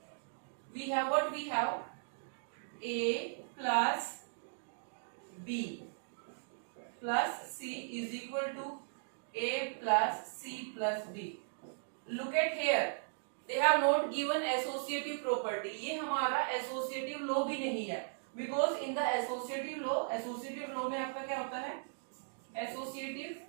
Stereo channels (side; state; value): left; silent; digital silence